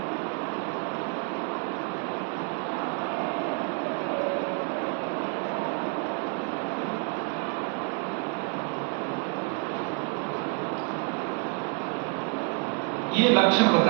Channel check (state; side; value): quieter; left; 36.2 dB